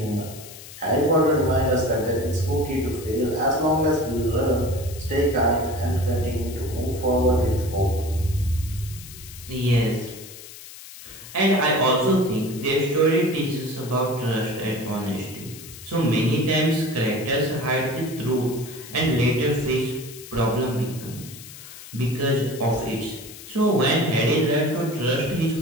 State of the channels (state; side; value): noise; left; hiss, 16 dB below the sound